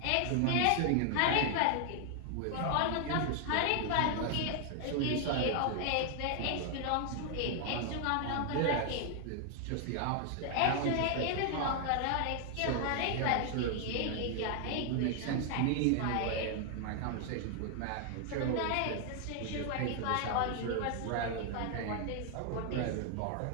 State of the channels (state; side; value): different; both; correlation 0.00